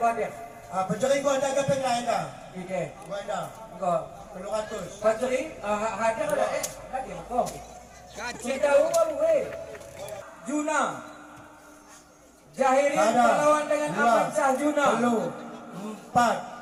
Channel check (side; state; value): both; identical; correlation 1.00